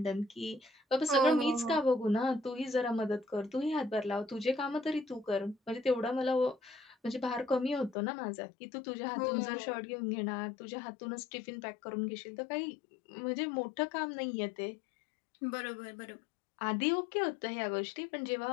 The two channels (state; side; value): drops out; right; at 8.0 s